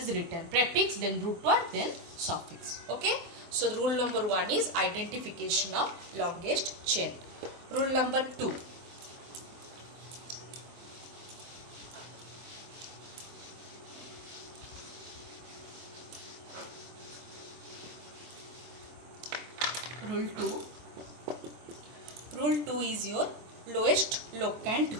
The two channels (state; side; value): late; left; 24 ms